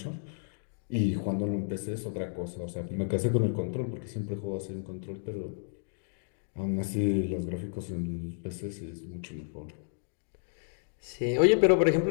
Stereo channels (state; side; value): silent; right; digital silence